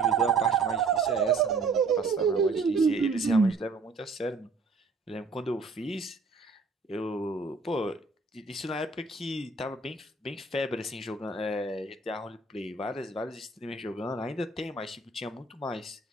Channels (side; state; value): left; quieter; 4.0 dB